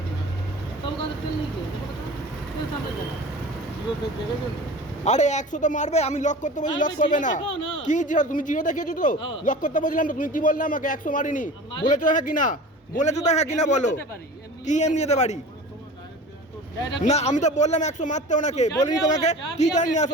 তবে কাছে তেল নেই কে? তেল সামনে দাও। জিরো তেল দেখেছো? আরে 100 তো মারবে, আমি লক করতে বলছি লক করবে না। কি জিরো? তুমি জিরো দেখিয়েছো তো? লক করতে বলছিলাম তো, তুমি কি বললে আমাকে 100 মারিনি? বলেছো হ্যাঁ কি না? বলেছো তো হ্যাঁ কি না বলো? কি এমনি যেতে পারি? না আমি তো বললাম 100 মারতে ওনাকে, বলিনি তোমাকে? কি জানি আসো,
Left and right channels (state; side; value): normal; both; correlation 0.38